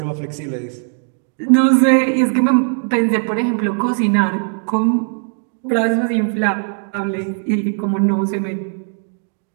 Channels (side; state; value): left; silent; 59 dB below the other